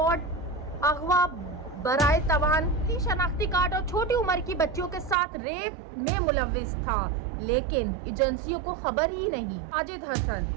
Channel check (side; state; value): left; drops out; at 5.2 s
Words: अगवा, बराए तवान, शनाख्ती कार्ड और छोटी उम्र की बच्चियों के साथ रेप में मुलव्विस था, लेकिन एजेंसियों को खबर ही नहीं। साजिद हसन,